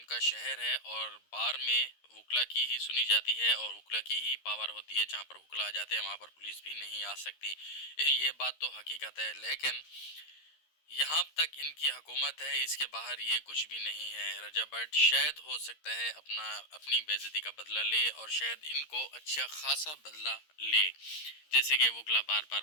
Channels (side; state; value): right; late; 13 ms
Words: शहर है और बार में वकला की ही सुनी जाती है और वकला की ही पावर होती है। जहाँ पर वकला आ जाते हैं वहाँ पर पुलिस भी नहीं आ सकती। ये बात तो हकीकत है। लेकिन यहाँ तक इनकी हुकूमत है, इसके बाहर ये कुछ भी नहीं है। रजा भट्ट शायद हो सकता है अपनी बेइज्जती का बदला ले और शायद इनको अच्छा खासा बदला ले। जैसे कि वकला बार